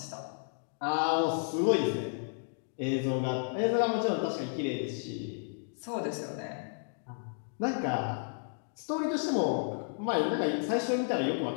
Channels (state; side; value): silent; right; digital silence